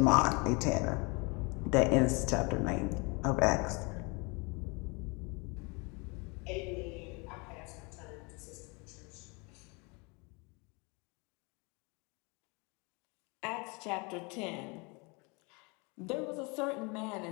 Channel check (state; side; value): quieter; right; 29.6 dB